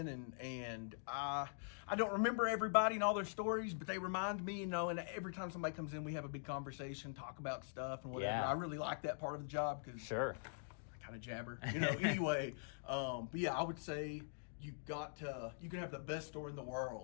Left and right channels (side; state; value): right; silent; digital silence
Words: and I don't remember everybody and all their stories, but they remind me, and every time somebody comes in, we have a big conversation, talk about stuff and whatever. Yeah. I really like that part of the job because Sure. I kind of jabber, anyway. But yeah, I would say you can have the best store in the